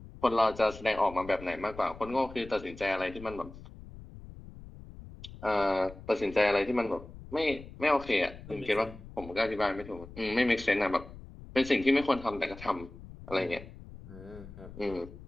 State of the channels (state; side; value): noise; left; rumble, 16 dB below the sound